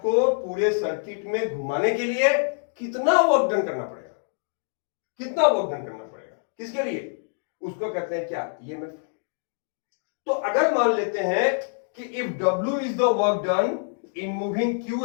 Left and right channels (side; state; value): right; silent; digital silence